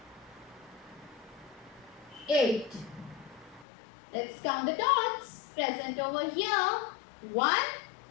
8. Let's count the dots present over here. 1,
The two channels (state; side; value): drops out; right; at 3.7 s